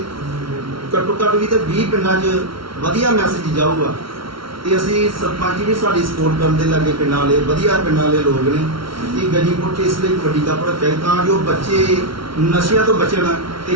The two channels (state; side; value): late; left; 0.74 ms